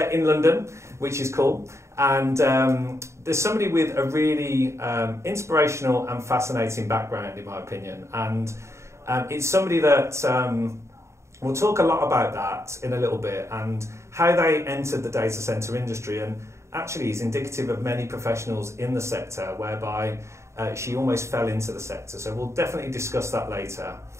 in London, which is cool, and there's somebody with a really inspirational and fascinating background, in my opinion, and it's somebody that we'll talk a lot about that in a little bit and how they entered the data center industry, and actually is indicative of many professionals in the sector whereby she almost fell into the sector. So we'll definitely discuss that later.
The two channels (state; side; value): late; left; 0.14 ms